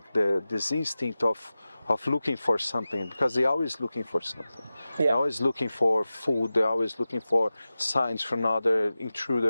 this instinct of looking for something, because they're always looking for something. Yeah. They're always looking for food. They're always looking for signs from other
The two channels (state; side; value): inverted; both; correlation -0.95